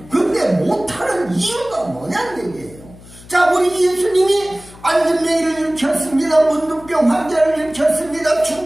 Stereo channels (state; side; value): noise; left; hum, 21 dB below the sound